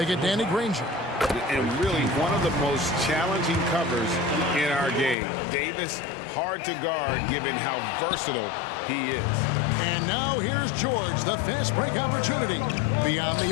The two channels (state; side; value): drops out; right; at 5.2 s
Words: get Danny Granger. And really one of the most challenging covers in our game. Davis, hard to guard given how versatile he is. And now here's George, the fast break opportunity. Beyond